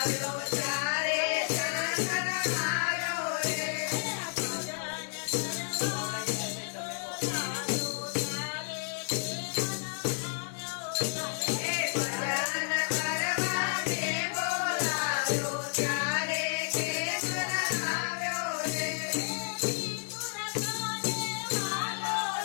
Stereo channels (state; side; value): silent; right; digital silence